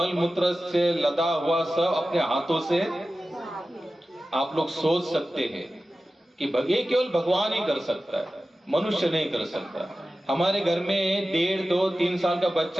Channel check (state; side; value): normal; both; correlation 0.95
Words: मूत्र से लदा हुआ सब अपने हाथों से, आप लोग सोच सकते हैं कि ये केवल भगवान ही कर सकता है, मनुष्य नहीं कर सकता। हमारे घर में 1.5, 2, 3 साल का